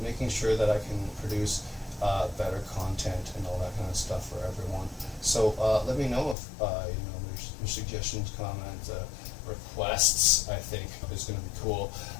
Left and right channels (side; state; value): right; drops out; at 6.4 s